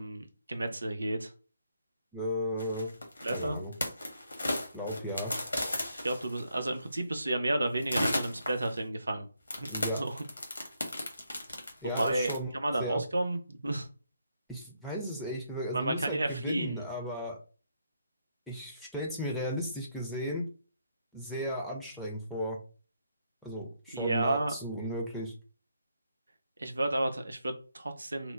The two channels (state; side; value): inverted; both; correlation -0.76